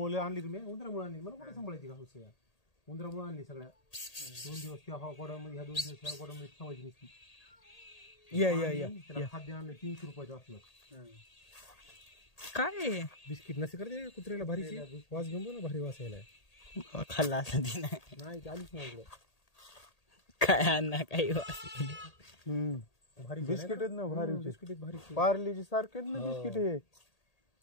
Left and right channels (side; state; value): right; late; 1.8 ms